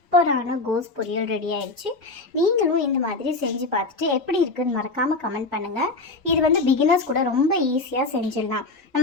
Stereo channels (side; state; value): right; quieter; 3.5 dB